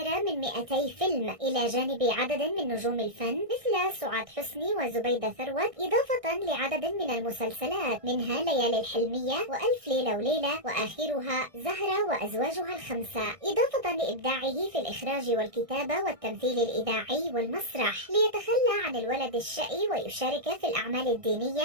من 200 فيلم إلى جانب عدد من نجوم الفن مثل سعاد حسني وزبيدة ثروت، إضافة لعدد من المسلسلات منها ليالي الحلمية وألف ليلة وليلة وآخرها زهرة وأزواجها الخمسة، إضافة لإبداعه في الإخراج والكتابة والتمثيل الإذاعي والمسرح. ليتخلى عن الولد الشقي ويشارك في الأعمال الدينية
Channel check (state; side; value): late; left; 1.6 ms